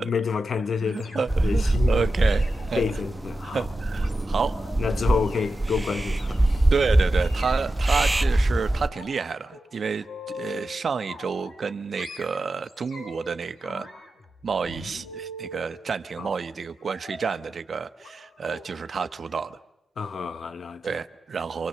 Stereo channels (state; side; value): normal; both; correlation 0.91